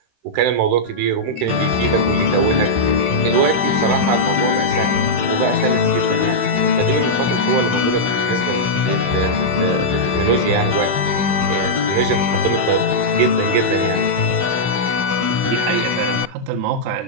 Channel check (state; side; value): late; left; 16 ms